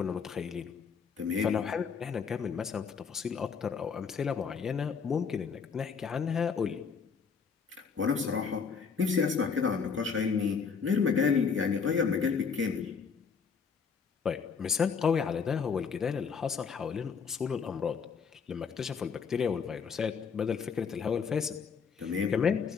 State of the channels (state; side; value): quieter; right; 5.9 dB